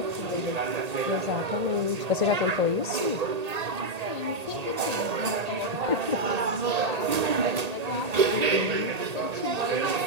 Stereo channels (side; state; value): left; late; 1.8 ms